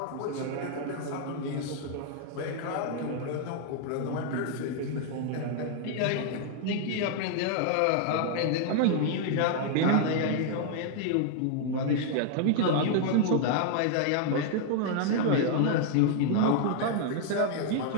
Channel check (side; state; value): both; different; correlation 0.00